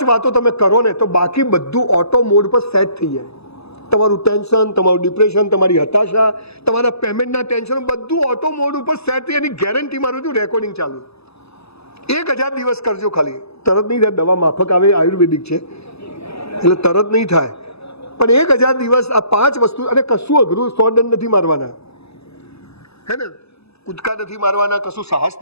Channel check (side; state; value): right; late; 0.79 ms